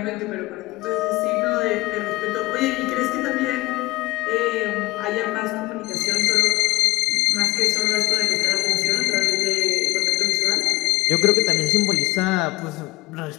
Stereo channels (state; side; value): quieter; right; 21.1 dB